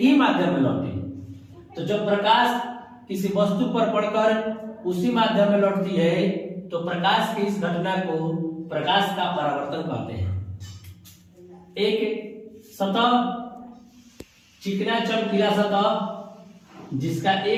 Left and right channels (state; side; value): identical; both; correlation 1.00